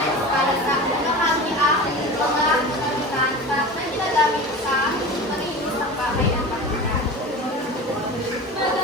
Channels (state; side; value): normal; both; correlation 0.32